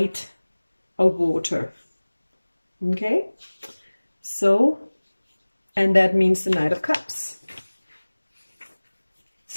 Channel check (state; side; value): inverted; both; correlation -1.00